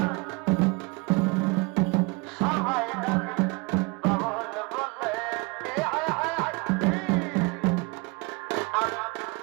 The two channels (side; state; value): left; quieter; 26.7 dB